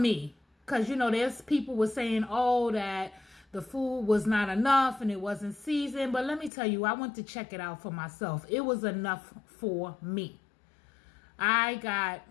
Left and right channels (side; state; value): right; drops out; at 6.5 s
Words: Because, there's people were saying, oh, that the food was not enough and it wasn't seasoned. But let me tell you, I went to check it out for myself. It was enough for me. I got